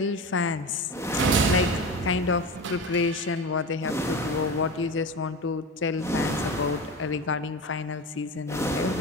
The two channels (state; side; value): normal; both; correlation 0.26